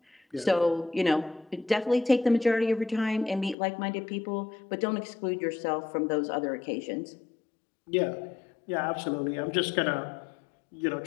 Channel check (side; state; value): right; drops out; at 3.6 s